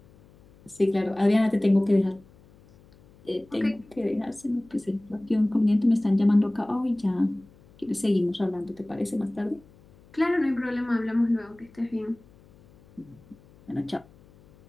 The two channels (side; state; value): left; noise; hum, 27 dB below the sound